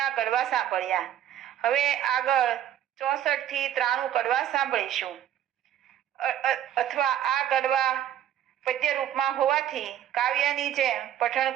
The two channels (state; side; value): quieter; left; 11.1 dB